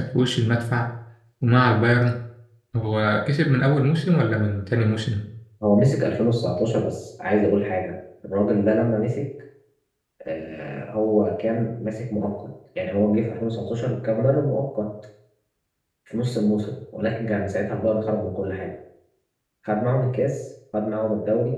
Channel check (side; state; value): both; identical; correlation 1.00